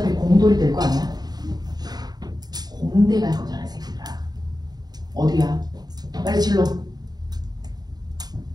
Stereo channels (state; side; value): late; left; 0.19 ms